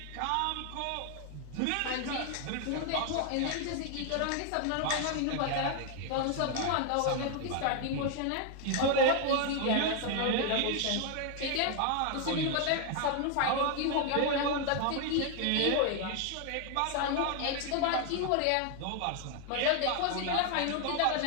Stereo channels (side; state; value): both; different; correlation 0.00